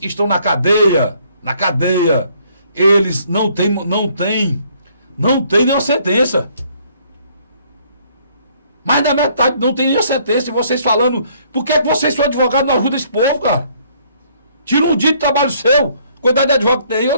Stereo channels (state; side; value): inverted; both; correlation -0.64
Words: estão na cadeia. Na cadeia. Eles não têm nenhuma sentença. Mais da metade não tem nenhuma sentença. E vocês falando, por que vocês são advogados não ajudam esse povo, cara? Tira um dia de trabalho seu. Quantidade de advogado que tem. Eu